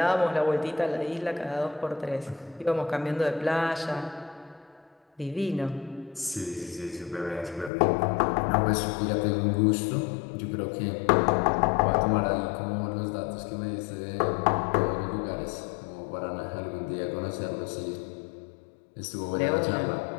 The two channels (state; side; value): drops out; right; at 7.7 s